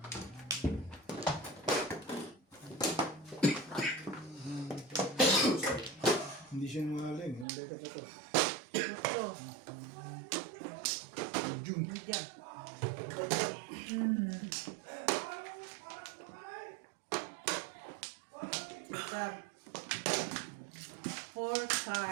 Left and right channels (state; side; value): drops out; left; at 7.5 s